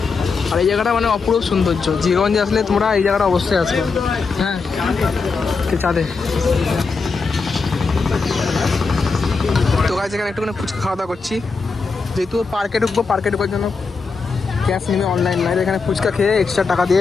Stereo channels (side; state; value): right; quieter; 4.7 dB